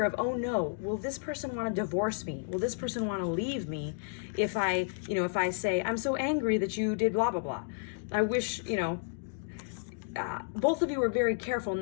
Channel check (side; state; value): right; silent; digital silence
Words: of, oh no, will this person want to divorce me? Will this person want to leave me if I say, I'm so angry that you did blah, blah, blah. I wish, both of you were very careful